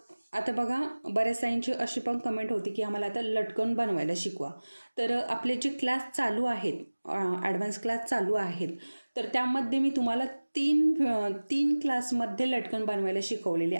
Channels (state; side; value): inverted; both; correlation -1.00